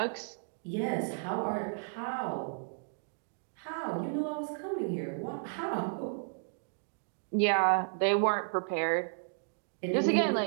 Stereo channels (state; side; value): silent; left; digital silence